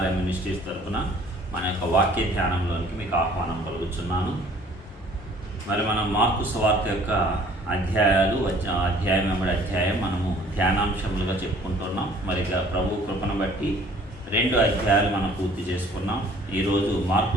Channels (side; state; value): both; normal; correlation 0.54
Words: మినిస్ట్రీస్ తరఫున మన యొక్క వాక్య ధ్యానంలోనికి మీకు ఆహ్వానం కలుగుతున్నాను. మరి మనం మార్కు సువార్త యొక్క అధ్యాయం వెంబడి అధ్యాయం మనము ధ్యానాంశములుగా చెప్పుకుంటున్నాం. మరి ప్రభు కృపను బట్టి 2 అధ్యాయాలు మనం పూర్తి చేసుకున్నాం. ఈరోజు